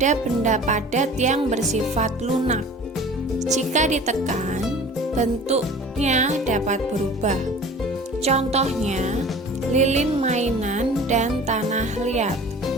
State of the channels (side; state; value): both; normal; correlation 0.43